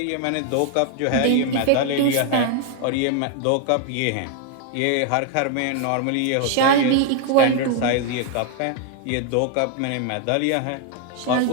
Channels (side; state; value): both; different; correlation 0.00